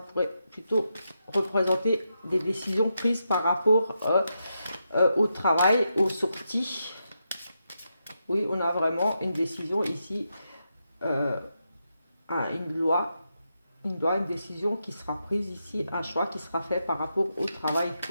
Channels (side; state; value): both; inverted; correlation -0.85